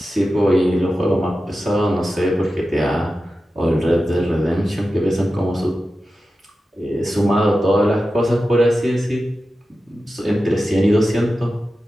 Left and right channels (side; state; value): both; normal; correlation 0.93